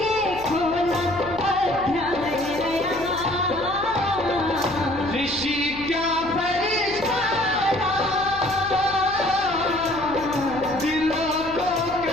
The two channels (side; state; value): left; noise; hum, 16 dB below the sound